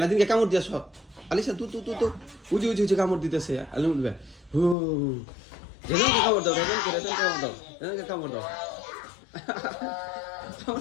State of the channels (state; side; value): drops out; right; at 4.8 s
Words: নাদিনকে কামড় দিয়েছ, আলিসা তু উজি কামড় দিতেছে আলিমুল ভাই, হু রেজওয়ানকে কামড় দাও, রেজওয়ানকে কামড় দাও